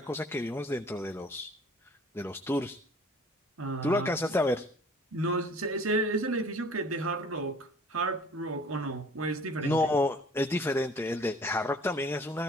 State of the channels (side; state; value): both; normal; correlation 0.51